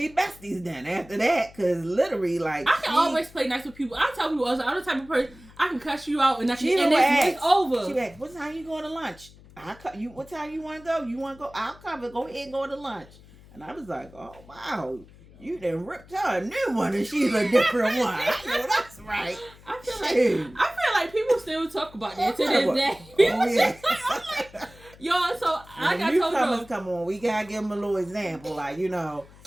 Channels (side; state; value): left; noise; hum, 23 dB below the sound